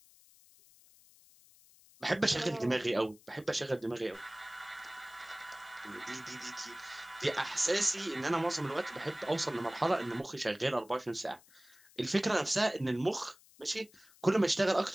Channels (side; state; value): left; noise; hiss, 26 dB below the sound